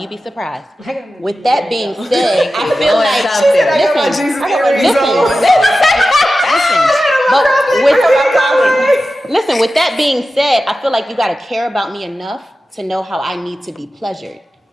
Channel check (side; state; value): both; normal; correlation 0.94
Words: be surprised. With that being said, I feel Knowing like, something. I got my Jesus earrings on. Listen, with that being said, I feel like you gotta care about me enough to know how I need to be pleasured.